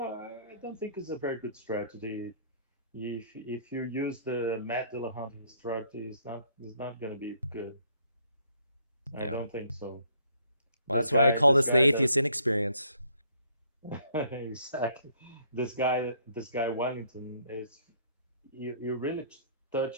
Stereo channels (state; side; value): inverted; both; correlation -0.64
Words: I don't think it's a very good strategy. If you use the Matt Dillahunty strategy, it's not going to be good. I Yeah. don't think so. Well, This that's why I guy, call this this the guy that atheist inexperience. exactly, this guy Wellington is you really